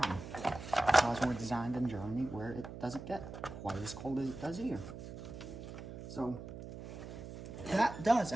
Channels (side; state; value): right; noise; hum, 11 dB below the sound